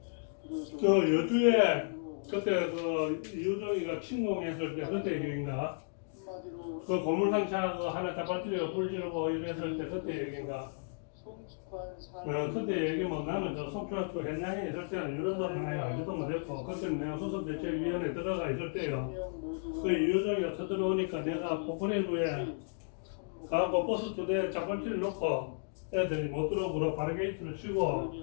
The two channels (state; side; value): silent; right; digital silence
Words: 비로소 저 여주에 그때 그 유정이가 침공했을 때 그때 얘기인가? 한마디로 그 고물상차 그 하나 잡아뜨려 불지르고 이랬을 때 그때 얘기인가? 성숙한 삶. 그때 얘기 뭐 나는 저 속초학교 현장에 있을 때는 이런 거 하나 알지도 못했고 그때는 내가 수습대책위원회 들어가 있을 때요. 그 유정이가 쳐들어오니까 내가 포크레인에 가고 버스 2대 잡아뜨려 놓고 애들이 못 들어오고 바리게이트를 치고